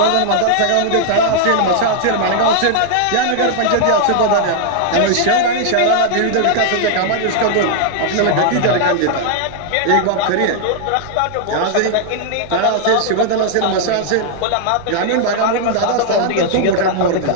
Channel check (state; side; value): different; both; correlation -0.01